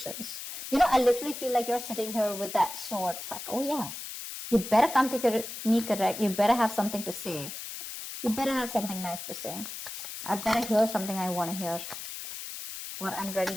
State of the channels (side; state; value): left; noise; hiss, 9 dB below the sound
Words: I literally feel like you're sitting here with that sword. It's like, oh yeah, you better come to me correct. You better have something to say. You better have something nice to say. I better hear something I want to hear, or I'm ready